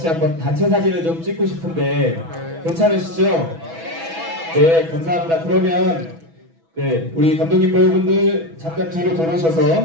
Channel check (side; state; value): left; late; 6.1 ms